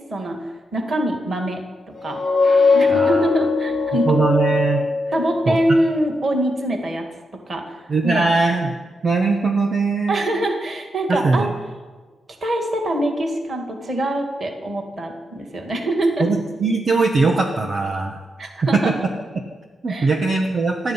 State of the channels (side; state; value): both; normal; correlation 0.83